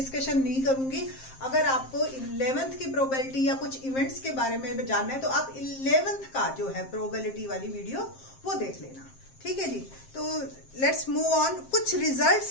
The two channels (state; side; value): late; right; 7.6 ms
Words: नहीं करूंगी। अगर आपको 11th की प्रोबेबिलिटी या कुछ इवेंट्स के बारे में जानना है तो आप 11th का जो है प्रोबेबिलिटी वाली वीडियो वो देख लेना, ठीक है जी। तो लेट्स मूव ऑन। कुछ